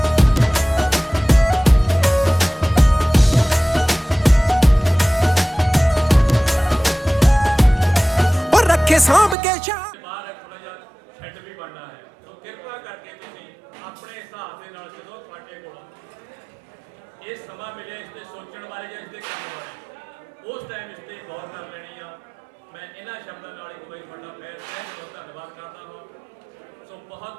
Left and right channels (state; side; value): drops out; left; at 9.3 s